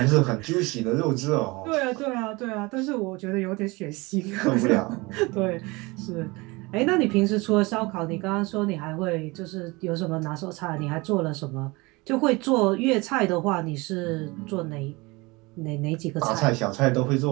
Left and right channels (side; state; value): left; quieter; 24.3 dB